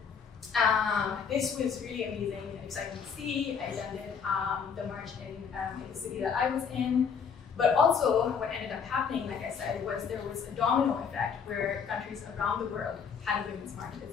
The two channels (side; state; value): right; quieter; 6.5 dB